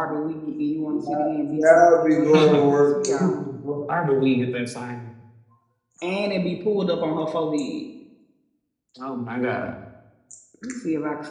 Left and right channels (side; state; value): both; identical; correlation 1.00